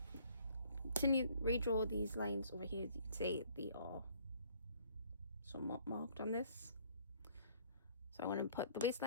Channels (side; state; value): both; inverted; correlation -0.59